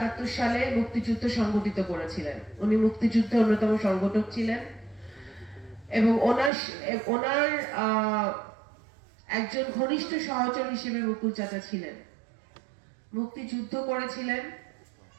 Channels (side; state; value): left; drops out; at 6.5 s